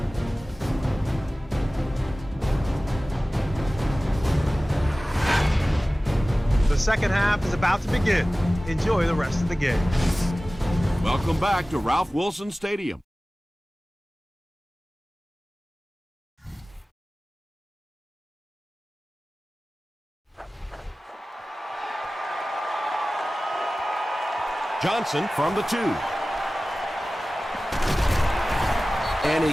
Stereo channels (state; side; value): normal; both; correlation 0.97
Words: The second half is about to begin. Enjoy the rest of the game. Welcome back to Ralph Wilson Stadium. Johnson from the 2. And